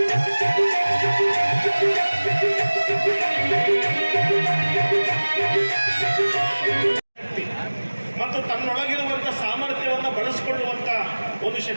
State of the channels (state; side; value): inverted; both; correlation -1.00